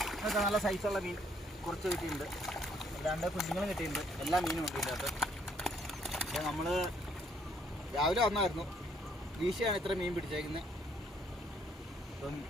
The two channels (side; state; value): both; normal; correlation 0.67